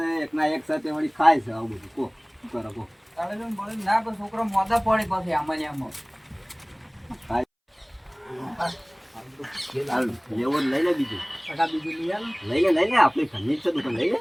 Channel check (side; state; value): both; identical; correlation 1.00